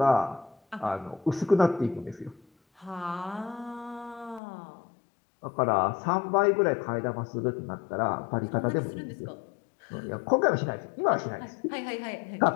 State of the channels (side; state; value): right; drops out; at 4.4 s